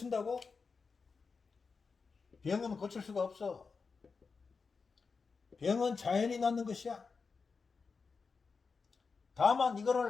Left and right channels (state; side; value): quieter; right; 4.9 dB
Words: 병은 고칠 수가 없어. 병은 자연히 낫는 것이야. 다만